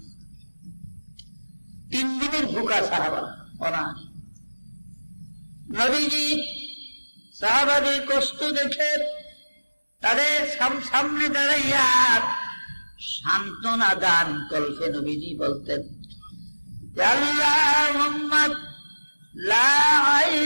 3 দিনের ভুকা সাহাবা অনাহারে। নবীজি সাহাবাদের কষ্ট দেখে তাদের সামনে দাঁড়াইয়া সান্ত্বনা দান করতে নবীজি বলতেন, আল্লাহুম্মা লা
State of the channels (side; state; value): both; inverted; correlation -1.00